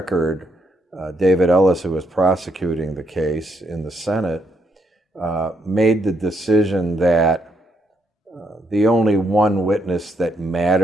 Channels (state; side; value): normal; both; correlation 0.76